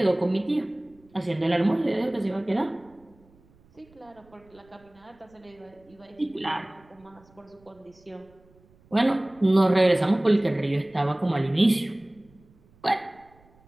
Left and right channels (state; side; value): noise; right; rumble, 30 dB below the sound